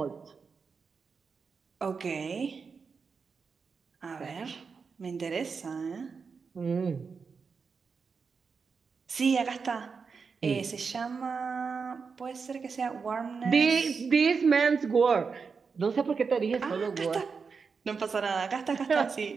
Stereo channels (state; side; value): quieter; left; 5.3 dB